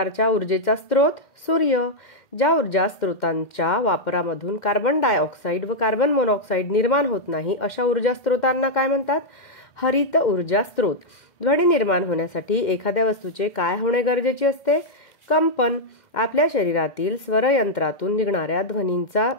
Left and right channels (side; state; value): right; late; 2.1 ms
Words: ऊर्जेचा स्रोत? सूर्य. ज्या ऊर्जा स्रोतांच्या वापरामधून कार्बन डायऑक्साईड व कार्बन मोनॉक्साईड निर्माण होत नाही अशा ऊर्जा स्रोतांना काय म्हणतात? हरित ऊर्जा स्रोत. ध्वनी निर्माण होण्यासाठी एखाद्या वस्तूचे काय होणे गरजेचे असते? कंपन. आपल्या शरीरातील स्वरयंत्रातून निघणाऱ्या ध्वनींचा